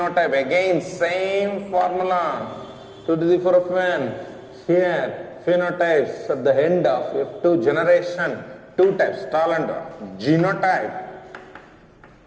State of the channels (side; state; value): both; identical; correlation 1.00